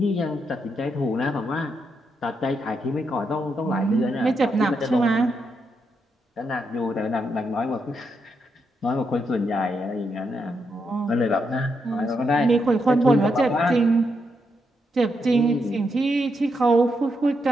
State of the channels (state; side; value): normal; both; correlation 0.81